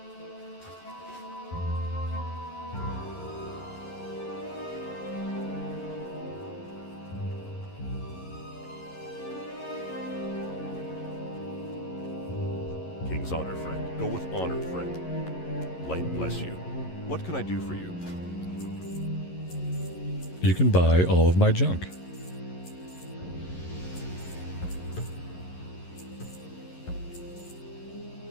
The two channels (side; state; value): right; late; 11 ms